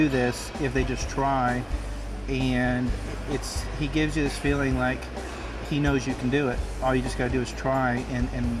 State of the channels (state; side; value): identical; both; correlation 1.00